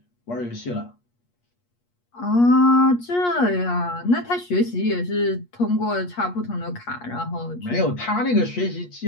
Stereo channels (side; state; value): right; late; 8.4 ms